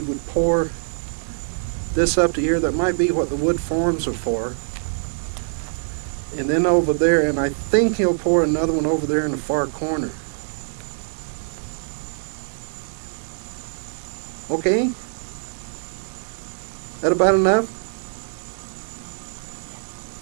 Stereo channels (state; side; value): silent; left; digital silence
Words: would pour this up to here. That might be what the wood forms are for. And then over there, and I think he'll pour another one over there in the far corner. Okay? That about enough?